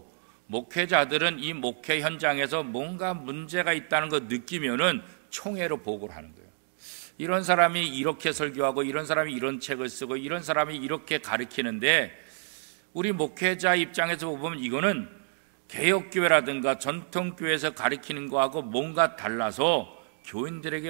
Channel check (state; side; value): silent; left; digital silence